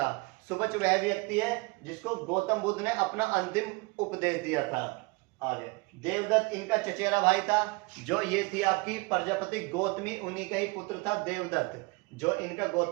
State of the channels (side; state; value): left; quieter; 27.0 dB